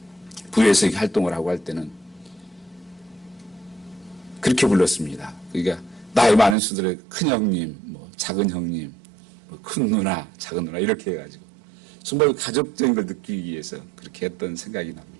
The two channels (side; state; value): left; drops out; at 6.6 s